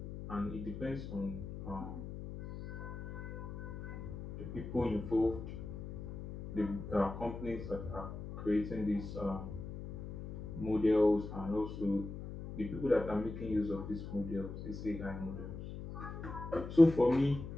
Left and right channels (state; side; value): noise; left; hum, 9 dB below the sound